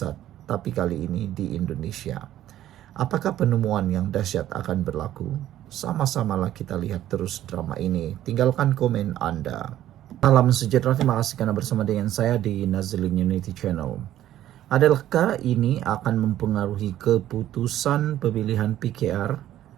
tapi kali ini di Indonesia. Apakah penemuan yang dahsyat akan berlaku? Sama-samalah kita lihat terus drama ini. Tinggalkan komen Anda. Salam sejahtera, terima kasih karena bersama dengan saya di Nazilin Unity Channel. Adakah ini akan mempengaruhi keputusan pemilihan PKR?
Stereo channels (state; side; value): quieter; left; 12.7 dB